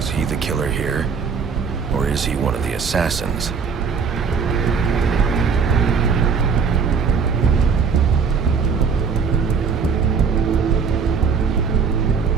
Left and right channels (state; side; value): quieter; left; 5.9 dB